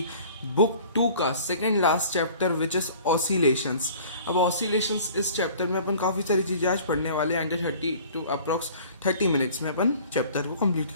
बुक 2 का second last chapter which is oscillations. अब ऑसिलेशंस इस चैप्टर में अपन काफ़ी सारी चीज़ें आज पढ़ने वाले हैं। अंडर 30 टू अप्रॉक्स 30 मिनट्स में अपन चैप्टर को कंप्लीट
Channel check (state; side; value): inverted; both; correlation -0.48